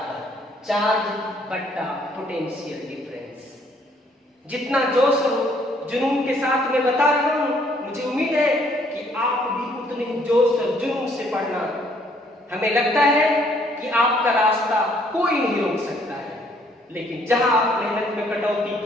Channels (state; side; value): normal; both; correlation 0.65